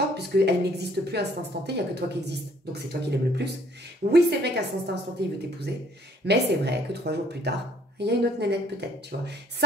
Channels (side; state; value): both; normal; correlation 0.59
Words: puisqu'elles n'existent plus à cet instant T, il n'y a que toi qui existe. Donc c'est toi qui l'aimes le plus. Oui, c'est vrai qu'à cet instant T, il veut t'épouser, mais c'est vrai que 3 jours plus tard, il y a une autre nénette peut-être, tu vois.